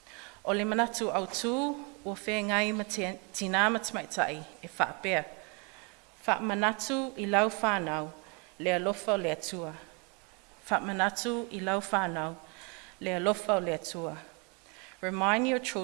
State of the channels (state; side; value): quieter; left; 32.8 dB